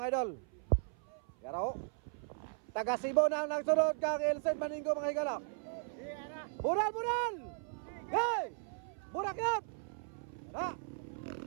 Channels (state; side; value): silent; left; 53 dB below the other